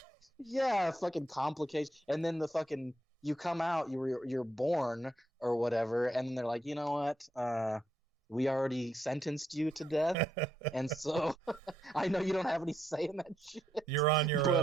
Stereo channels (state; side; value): normal; both; correlation 0.79